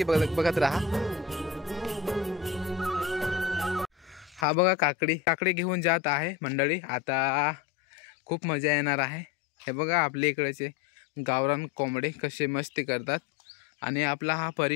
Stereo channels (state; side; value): drops out; right; at 4.5 s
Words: बघत राहा। हा बघा काकडी घेऊन जात आहे मंडळी। आता खूप मजा येणार आहे। हे बघा आपल्या इकडेचे गावरान कोंबडे कसे मस्ती करतात आणि आपला हा